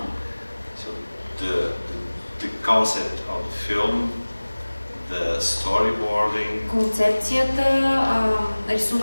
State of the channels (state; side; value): inverted; both; correlation -1.00